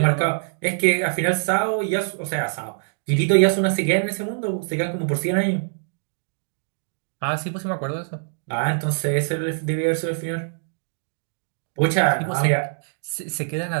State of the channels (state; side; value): silent; left; digital silence